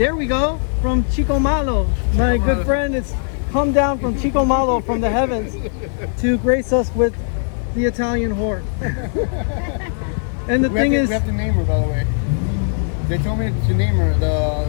we go, from Chico Malo. My good friend has come down from Chico Malo from the heavens to grace us with the Italian whore. And the thing is, we have to name her, by the way. They told me to name her,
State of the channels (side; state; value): right; silent; 60 dB below the other